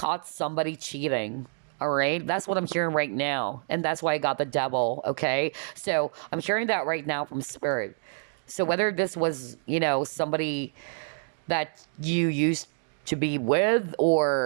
somebody cheating, all right? That's what I'm hearing right now, and that's why I got the devil, okay? So I'm hearing that right now from Spirit. So whether this was, somebody that you used to be with,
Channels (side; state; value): left; silent; digital silence